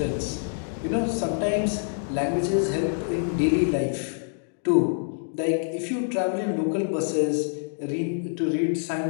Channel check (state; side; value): silent; right; digital silence